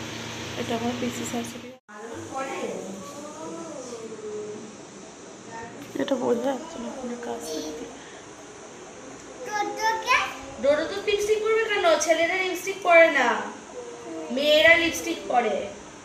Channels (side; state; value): both; identical; correlation 1.00